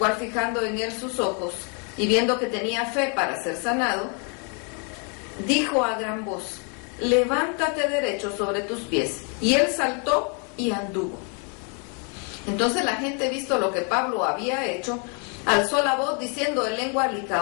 fijando en él sus ojos y viendo que tenía fe para ser sanado, dijo a gran voz: levántate derecho sobre tus pies. Y él saltó y anduvo. Entonces la gente, visto lo que Pablo había hecho, alzó la voz diciendo en lengua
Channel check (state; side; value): quieter; right; 37.8 dB